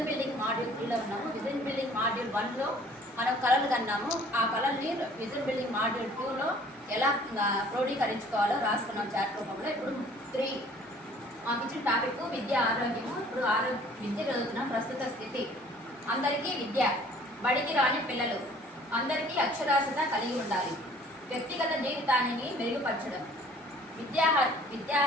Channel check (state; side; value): normal; both; correlation 0.54